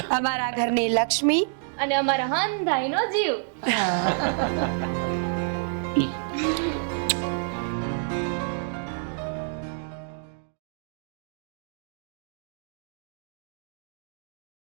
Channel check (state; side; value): silent; left; digital silence